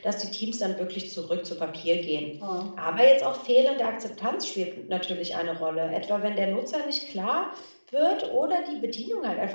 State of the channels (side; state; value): both; inverted; correlation -1.00